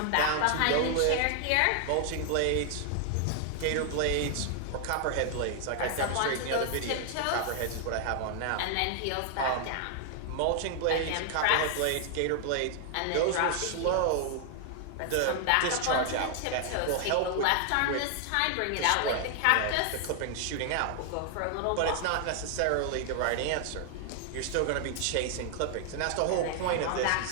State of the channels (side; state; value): both; different; correlation 0.00